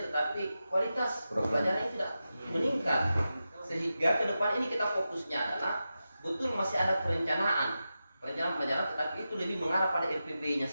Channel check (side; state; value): both; inverted; correlation -0.91